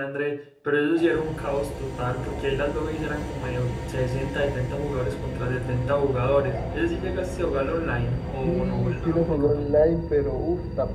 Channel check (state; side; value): identical; both; correlation 1.00